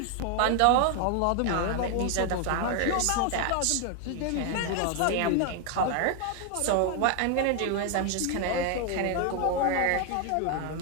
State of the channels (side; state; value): both; different; correlation 0.00